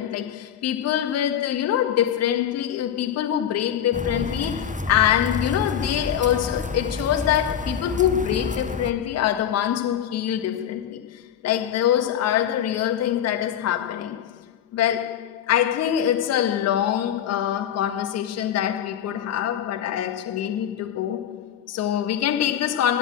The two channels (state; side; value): quieter; right; 9.8 dB